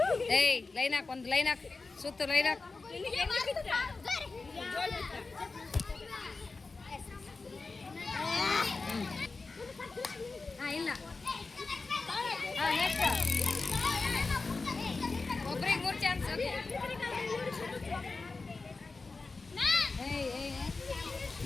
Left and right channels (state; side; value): quieter; right; 3.9 dB